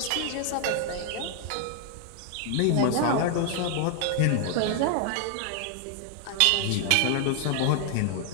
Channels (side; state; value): both; different; correlation 0.00